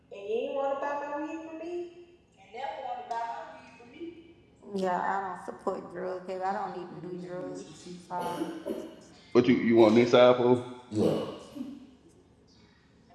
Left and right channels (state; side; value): identical; both; correlation 1.00